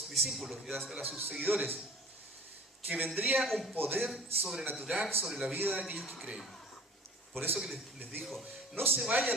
discípulos y a sus seguidores que vendría un poder sobrenatural sobre la vida de aquellos que creen. Por eso que les dijo, no se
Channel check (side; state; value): both; normal; correlation 0.46